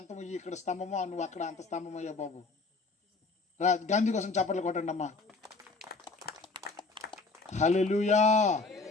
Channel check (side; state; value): right; quieter; 3.8 dB